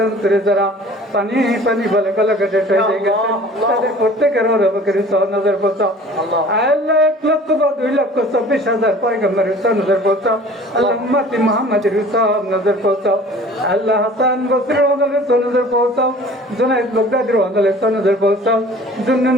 अंतरे जरा पानी पानी भले भले गटे हয়ে গেছে, তাদের প্রত্যেকের রবকের সহ নজর পৌঁছাও। আল্লাহ 1 লক্ষ বা 2 লক্ষ 26,000 পয়গম্বরের সহ নজর পৌঁছাও। আল্লাহ উম্মতি মুহাম্মাদের সহ নজর পৌঁছাও। আল্লাহ হাসান বসরির ওয়ালের সহ নজর পৌঁছাও। জুনাইদ বাগদাদির ওয়ালের সহ নজর পৌঁছাও। জুন্নুন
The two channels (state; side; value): normal; both; correlation 0.47